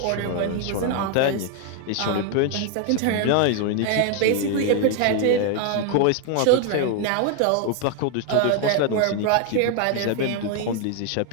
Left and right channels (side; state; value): both; different; correlation 0.01